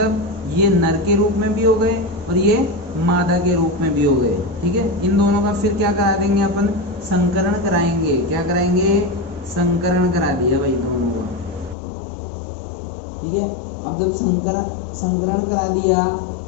ये नर के रूप में भी हो गए और ये मादा के रूप में भी हो गए, ठीक है। इन दोनों का फिर क्या करा देंगे अपन, संकरण कराएंगे। क्या कराएंगे, संकरण करा दिया भाई दोनों का, ठीक है। अब जब संकरण करा दिया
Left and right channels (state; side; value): drops out; right; at 11.8 s